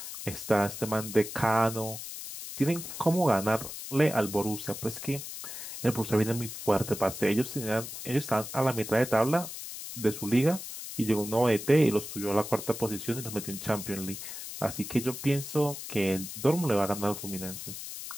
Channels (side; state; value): left; noise; hiss, 9 dB below the sound